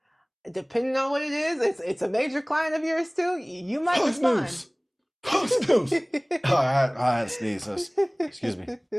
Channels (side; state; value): both; identical; correlation 1.00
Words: depending on what it is, it's a major client of yours too, you might respond. Post news. Oh, I had to sneeze. Excuse me.